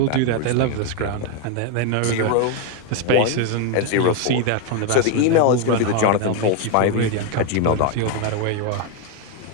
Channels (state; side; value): different; both; correlation 0.01